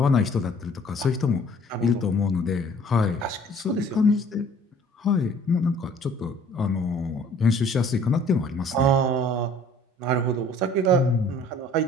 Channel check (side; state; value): both; normal; correlation 0.54